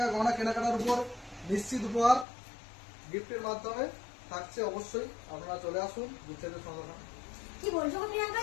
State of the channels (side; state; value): right; drops out; at 2.2 s